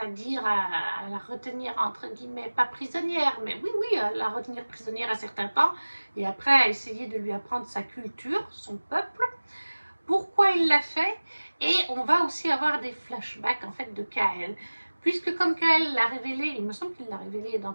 à la retenir, entre guillemets, pas prisonnière, mais oui, à la retenir prisonnière à certains temps, et après à essayer de lui apprendre sa culture, son peuple, pourquoi il l'a fait, et on va aussi avoir des flashbacks, en fait, de Kael, puisque comme Kael l'a révélé, il me semble qu'il l'a révélé dans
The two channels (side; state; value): both; inverted; correlation -1.00